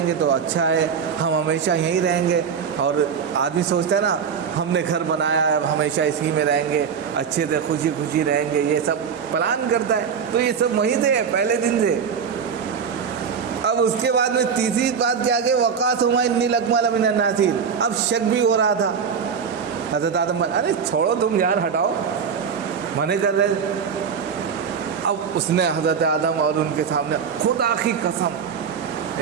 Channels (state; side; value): quieter; left; 6.7 dB